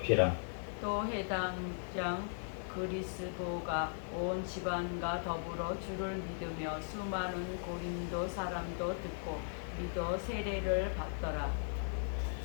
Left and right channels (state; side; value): silent; right; digital silence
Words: 또 해당장 그리스도가 온 집안과 더불어 주를 믿으며 수많은 고린도 사람도 듣고 믿어 세례를 받더라.